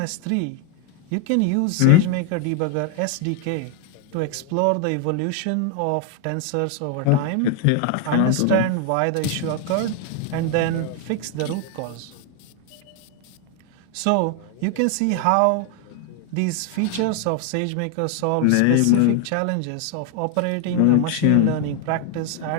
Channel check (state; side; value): different; both; correlation 0.01